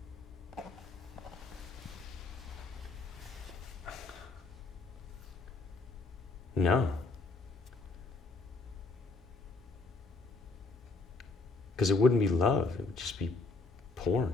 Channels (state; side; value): quieter; right; 3.7 dB